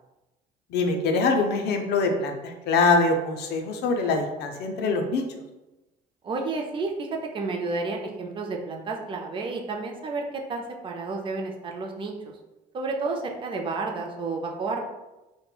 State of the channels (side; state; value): both; normal; correlation 0.26